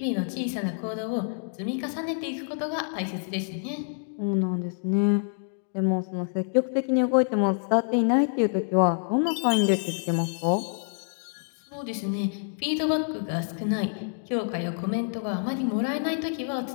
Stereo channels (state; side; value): silent; right; digital silence